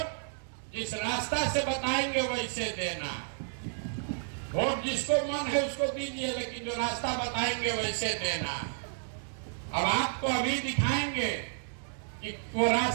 जिस रास्ता से बताएंगे वैसे देना, वोट जिसको मन है उसको दीजिए, लेकिन जो रास्ता बताएंगे वैसे देना। अब आपको अभी दिखाएंगे कि वो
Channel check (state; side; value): silent; left; digital silence